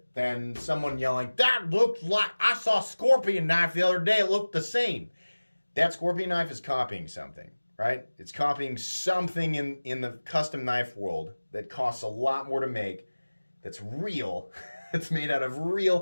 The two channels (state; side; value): inverted; both; correlation -1.00